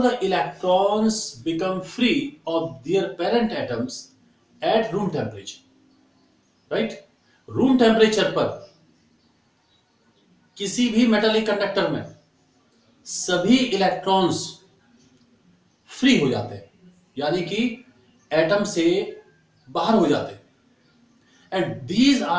the electrons become free of their parent atoms at room temperature. Right? Room temperature पर किसी भी metallic conductor में सभी electrons फ्री हो जाते हैं, यानी कि एटम से बाहर हो जाते हैं। And these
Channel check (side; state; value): both; identical; correlation 1.00